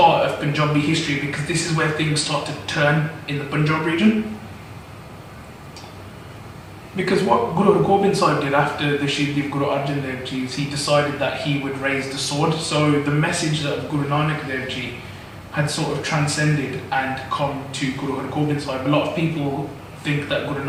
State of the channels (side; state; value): both; identical; correlation 1.00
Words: of Punjabi history because this is where things start to turn in the Punjab region. Because what Guru Har Gobind Sahib did after the Shahidi of Guru Arjan Dev Ji is he decided that he would raise the sword. So the message of Guru Nanak Dev Ji had sort of transcended and come to Guru Har Gobind Sahib. A lot of people think that Guru